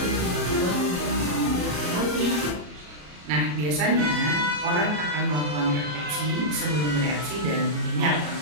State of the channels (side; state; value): left; late; 34 ms